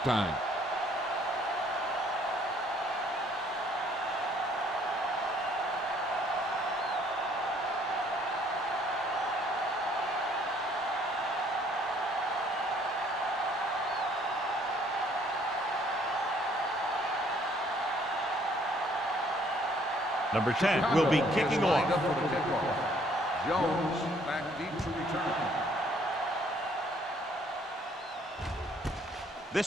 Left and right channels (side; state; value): both; normal; correlation 0.62